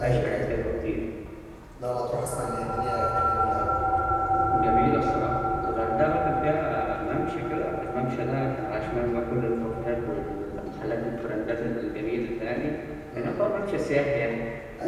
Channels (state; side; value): identical; both; correlation 1.00